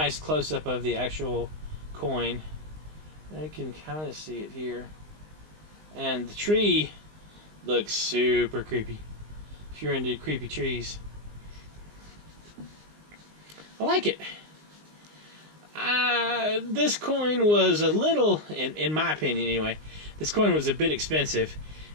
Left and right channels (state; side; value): late; left; 19 ms